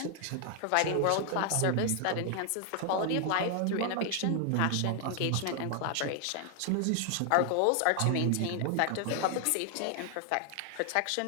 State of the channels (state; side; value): different; both; correlation 0.00